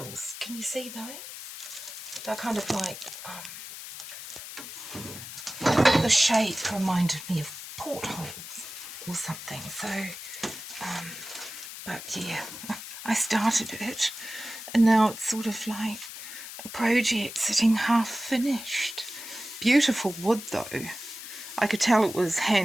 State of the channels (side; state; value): left; noise; hiss, 11 dB below the sound